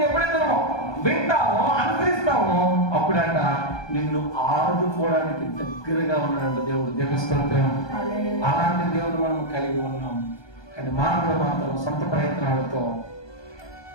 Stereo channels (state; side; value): late; right; 1.2 ms